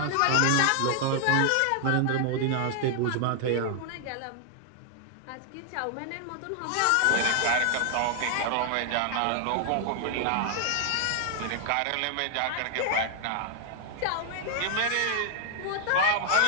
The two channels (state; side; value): different; both; correlation 0.00